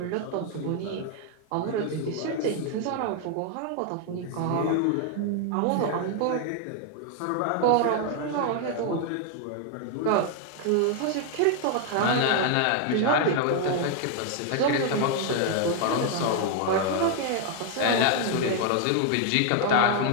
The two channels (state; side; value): different; both; correlation 0.00